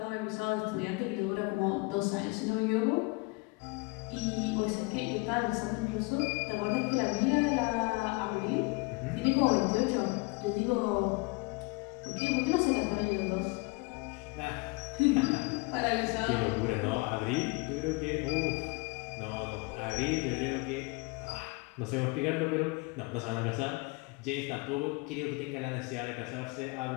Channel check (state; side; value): quieter; right; 27.0 dB